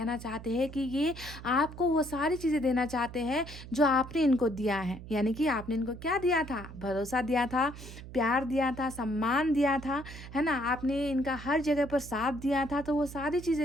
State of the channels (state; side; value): noise; right; hum, 14 dB below the sound